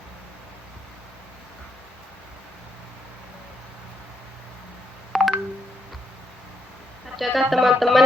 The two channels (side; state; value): both; normal; correlation 0.78